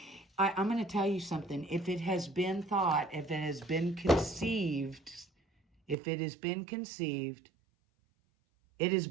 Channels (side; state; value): left; drops out; at 6.0 s